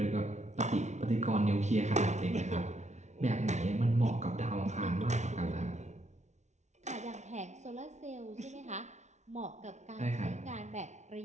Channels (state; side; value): late; left; 0.33 ms